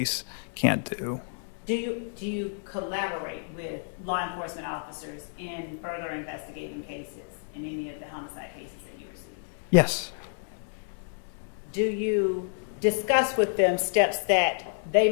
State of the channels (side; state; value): right; silent; digital silence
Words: can't do. Do you collaborate with law enforcement officers in further investigating cases, in any of the homicide cases that you receive? Yes. Do you discuss with them steps that they